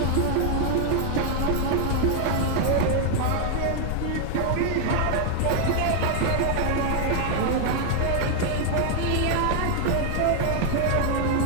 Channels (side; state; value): both; different; correlation 0.00